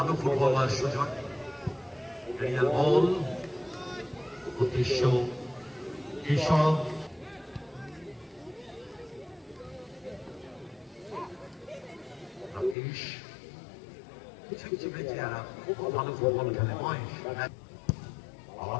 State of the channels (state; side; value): drops out; right; at 12.8 s